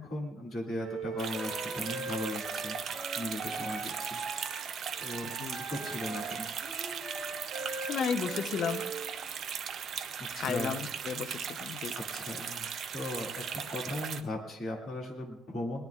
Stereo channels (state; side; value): normal; both; correlation 0.68